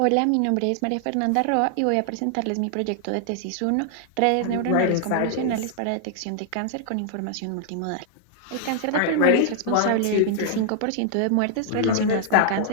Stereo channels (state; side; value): different; both; correlation -0.01